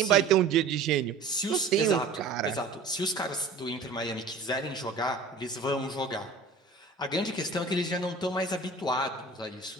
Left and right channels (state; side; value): quieter; left; 4.0 dB